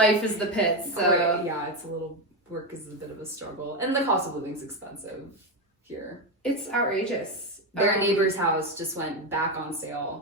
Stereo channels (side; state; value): both; normal; correlation 0.11